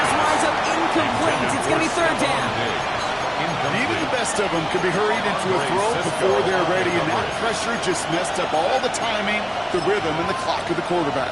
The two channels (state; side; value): identical; both; correlation 1.00